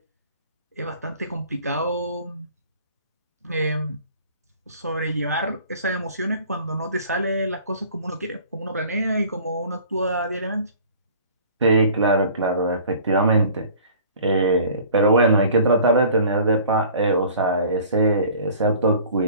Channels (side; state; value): both; inverted; correlation -0.48